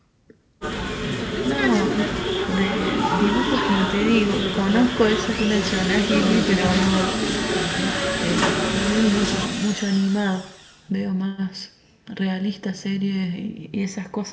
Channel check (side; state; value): both; identical; correlation 1.00